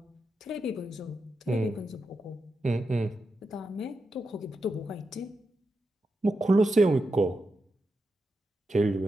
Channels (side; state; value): both; normal; correlation 0.87